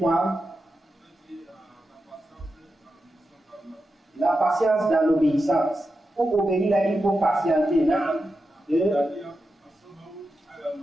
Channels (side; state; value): both; normal; correlation 0.89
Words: La patience dans l'obéissance. Pour obéir là, il faut patienter. Qui veut